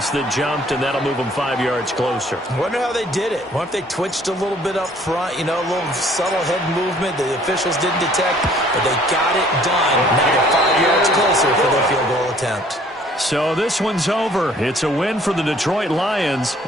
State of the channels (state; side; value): normal; both; correlation 0.57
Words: that jumped, and that'll move them 5 yards closer. I wonder how they did it. What if they twitched a little bit up front, a little subtle head movement the officials didn't detect, but they got it done. Now they're 5 yards closer for their field goal attempt. So this one's over. It's a win for the Detroit Lions,